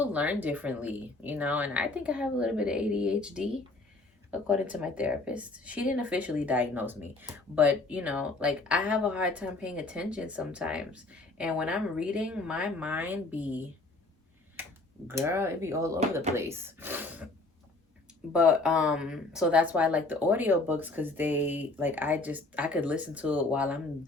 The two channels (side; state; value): right; quieter; 3.1 dB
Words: learn differently, you know, and I think I have a little bit of ADHD according to my therapist. She didn't officially diagnose me, but you know, like I have a hard time paying attention sometimes. And when I'm reading, my mind be, girl, it be all over the place. But so that's why I like the audiobooks, because they like I could listen to it while I'm